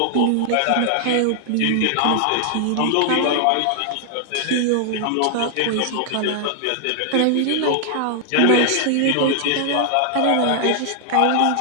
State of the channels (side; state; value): both; different; correlation 0.00